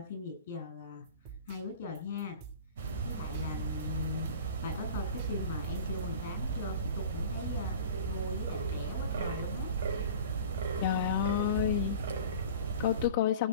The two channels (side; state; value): both; inverted; correlation -0.40